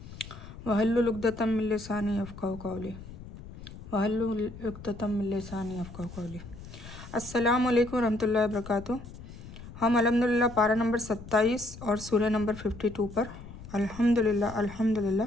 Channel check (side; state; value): left; noise; rumble, 14 dB below the sound